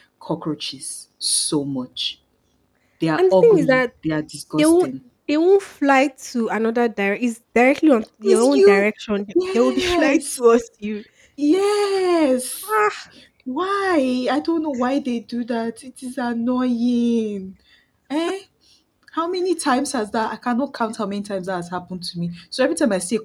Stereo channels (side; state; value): both; identical; correlation 1.00